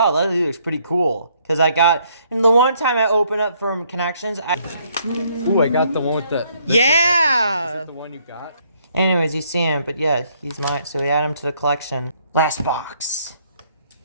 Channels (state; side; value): inverted; both; correlation -0.68